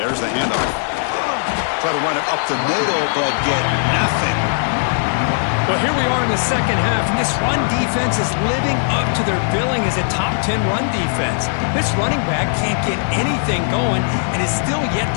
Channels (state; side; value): silent; right; digital silence